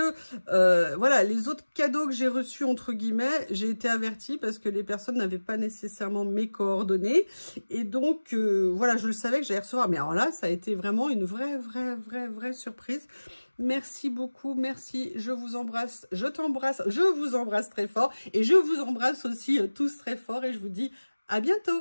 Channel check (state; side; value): inverted; both; correlation -1.00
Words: voilà, les autres cadeaux que j'ai reçus, entre guillemets, j'ai été avertie parce que les personnes n'avaient pas nécessairement mes coordonnées. Et donc, voilà, je le savais que j'allais recevoir. Mais alors là, ça a été vraiment une vraie surprise. Merci beaucoup, merci. Je vous embrasse, je t'embrasse, je vous embrasse très fort. Et je vous embrasse aussi tous très fort. Et je vous dis à